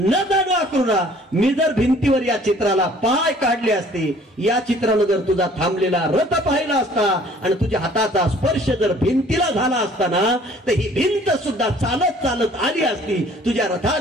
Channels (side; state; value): both; normal; correlation 0.54